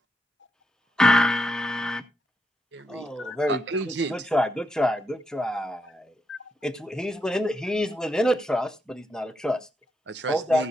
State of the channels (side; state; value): both; normal; correlation 0.82